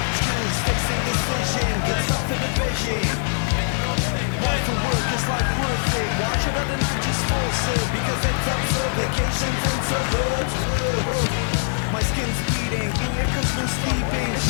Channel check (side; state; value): right; silent; 64 dB below the other